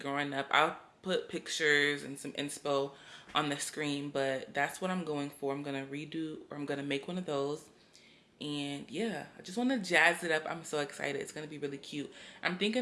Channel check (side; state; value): both; identical; correlation 1.00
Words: up? I'll put pictures and some inspo on the screen, but that's what I'm going for. I'm gonna redo, or I'm gonna make one of those. And yeah, I just want to jazz it up. I'm so excited. It's gonna be really cute. I'm